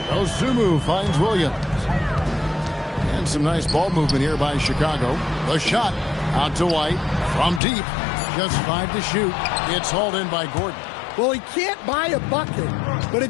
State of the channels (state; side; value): drops out; right; at 7.6 s